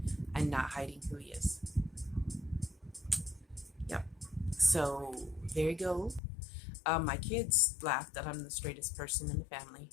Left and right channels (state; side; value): drops out; right; at 6.2 s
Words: and not hiding who he is. Yep. So there you go. My kids laugh that I'm the straightest person in the family